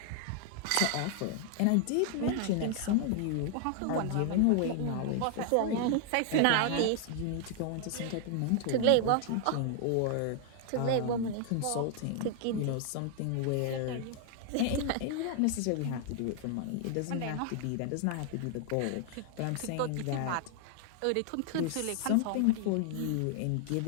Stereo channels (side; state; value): both; different; correlation 0.00